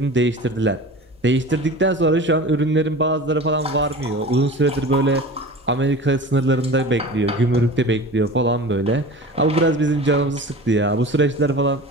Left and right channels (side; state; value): both; normal; correlation 0.36